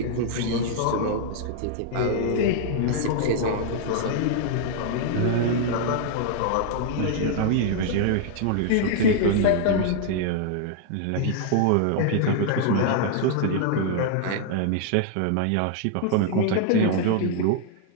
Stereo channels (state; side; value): different; both; correlation -0.01